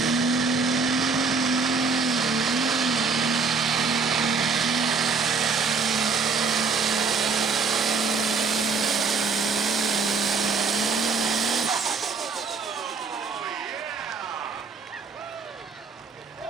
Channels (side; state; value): left; quieter; 4.7 dB